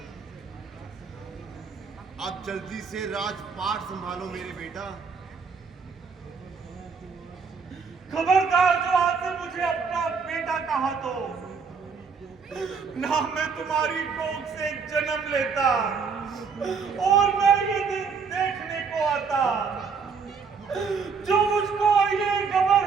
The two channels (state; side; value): quieter; left; 5.5 dB